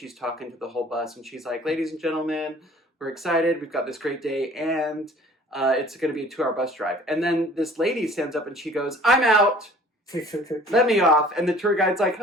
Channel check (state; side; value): normal; both; correlation 0.50